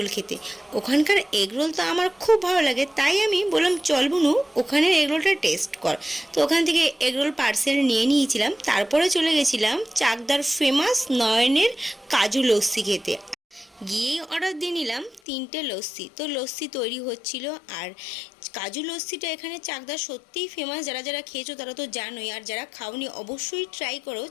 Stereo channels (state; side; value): drops out; right; at 15.2 s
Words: খেতে। ওখানকার এগরোল তো আমার খুব ভালো লাগে, তাই আমি বললাম চল বুনু ওখানের এগরোলটা টেস্ট কর। তো ওখান থেকে এগরোল পার্সেল নিয়ে নিয়েছিলাম, তারপরে চলে গেছিলাম চাকদার ফেমাস নয়নের কাজু লস্যি খেতে। গিয়েই অর্ডার দিয়ে নিলাম 3টে লস্যি। তো লস্যি তৈরি হচ্ছিল, আর কাজু লস্যিটা এখানে চাকদা সত্যিই ফেমাস। যারা যারা খেয়েছো তারা তো জানোই, আর যারা খাওনি অবশ্যই ট্রাই করো।